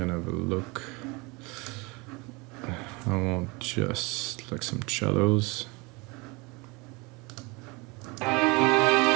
to have a look. I want just like some cellos.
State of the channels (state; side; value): quieter; left; 26.7 dB